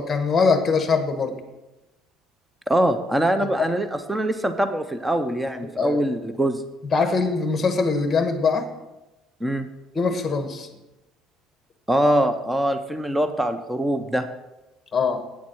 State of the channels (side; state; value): both; normal; correlation 0.79